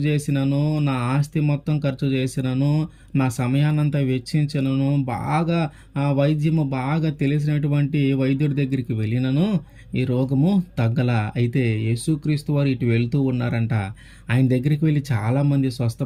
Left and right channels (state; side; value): identical; both; correlation 1.00